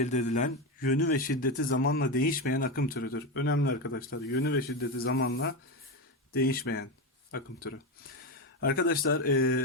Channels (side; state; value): both; normal; correlation 0.14